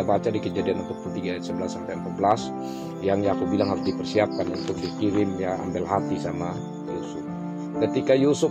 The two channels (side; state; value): both; identical; correlation 1.00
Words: baca di Kejadian 43 ayat 11 sampai 14 yang Yakub bilang harus dipersiapkan untuk dikirim, ya, ambil hati sama Yusuf. Ketika Yusuf